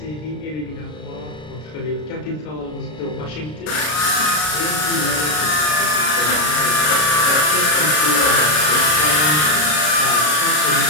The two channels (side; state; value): right; late; 33 ms